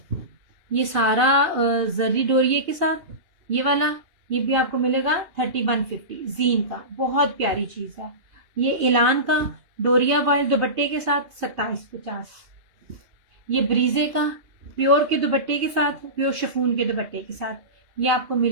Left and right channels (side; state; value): left; late; 2.8 ms